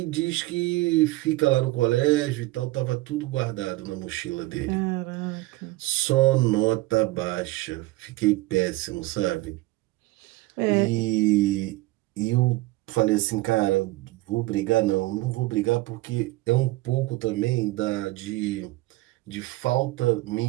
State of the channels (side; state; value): left; quieter; 19.7 dB